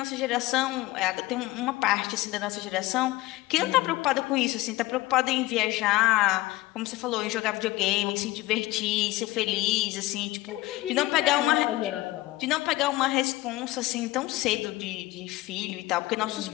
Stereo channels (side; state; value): right; quieter; 18.7 dB